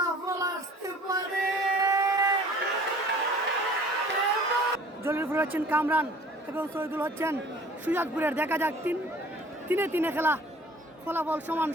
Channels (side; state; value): both; normal; correlation 0.49